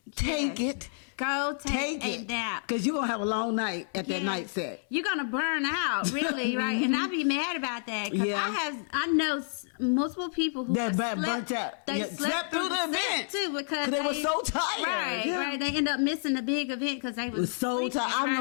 take it. Go take a nap. Because you're going to have a long night at that night set. You're going to burn out, really, right? And I'll be mad about that. Because I know multiple people who burnt out. They slept through the event too because they were so tired. Right. They end up missing the big event because they was so tired. I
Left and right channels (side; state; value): right; silent; digital silence